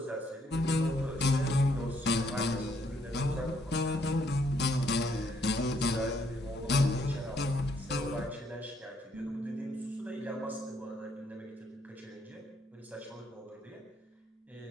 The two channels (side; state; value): both; normal; correlation 0.71